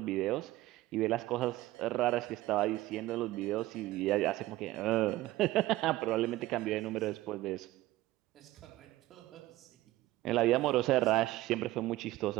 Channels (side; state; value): left; quieter; 17.0 dB